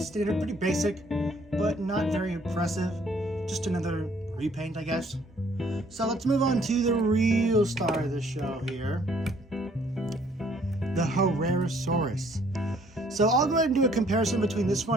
pretty basic, but not very impressive. Just another repaint, I guess. So let's move on to the real star of the show here, the Herrerasaurus. So I'll go ahead and do a comparison between this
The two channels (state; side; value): normal; both; correlation 0.62